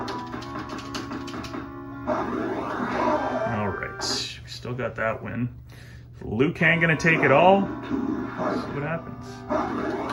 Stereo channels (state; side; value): identical; both; correlation 1.00